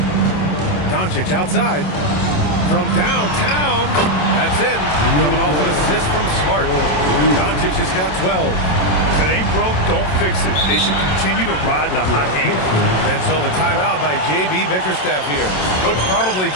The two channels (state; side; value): late; right; 27 ms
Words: Doncic outside. From downtown. That's in. Coming off an assist from Smart. Doncic has got 12. If it ain't broke, don't fix it. They should continue to ride the hot hand. And so the timeout by J.B. Bickerstaff here. Coach probably